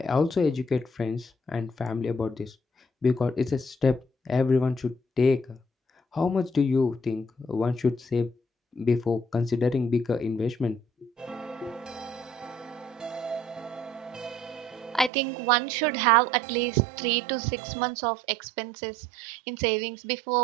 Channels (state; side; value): drops out; left; at 15.1 s